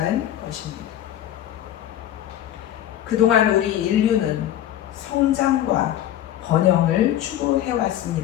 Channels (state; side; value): quieter; right; 11.9 dB